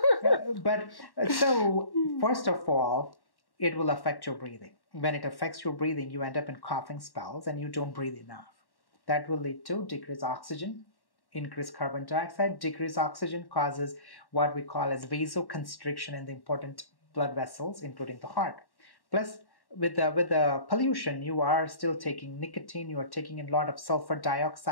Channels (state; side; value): late; right; 1.1 ms